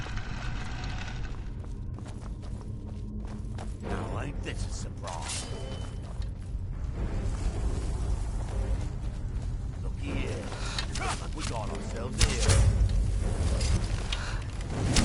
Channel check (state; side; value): identical; both; correlation 1.00